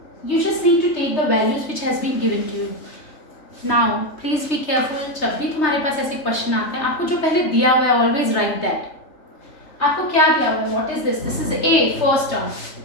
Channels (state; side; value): late; right; 3.2 ms